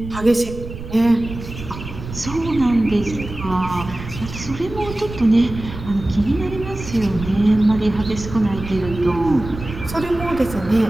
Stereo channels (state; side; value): noise; right; rumble, 11 dB below the sound